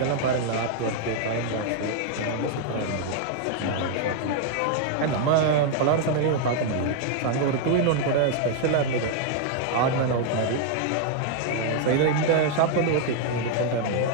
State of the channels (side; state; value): both; different; correlation 0.00